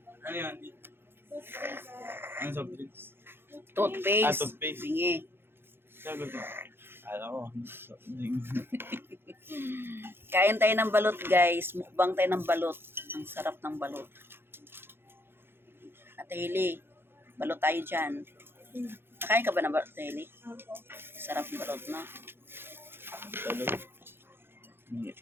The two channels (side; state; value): left; late; 0.11 ms